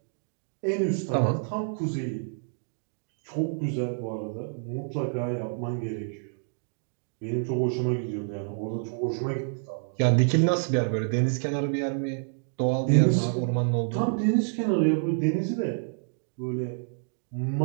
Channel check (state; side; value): silent; left; digital silence